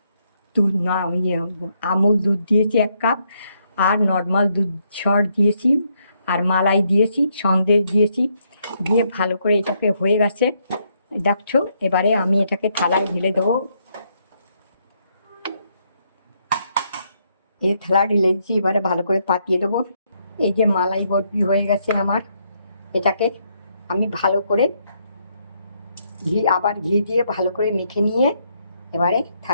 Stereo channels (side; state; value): both; inverted; correlation -0.75